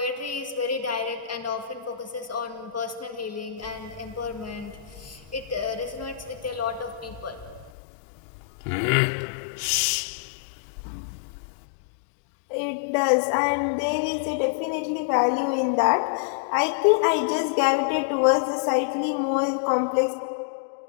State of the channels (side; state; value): right; drops out; at 7.7 s